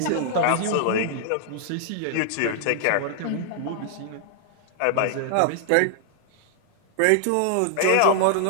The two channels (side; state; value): both; different; correlation -0.01